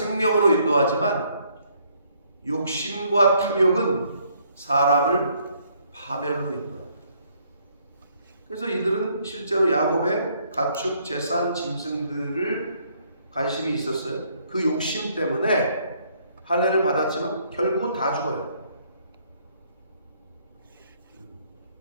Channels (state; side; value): inverted; both; correlation -0.67